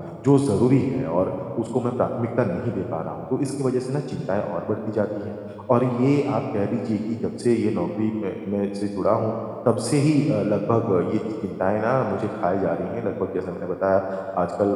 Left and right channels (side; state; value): both; identical; correlation 1.00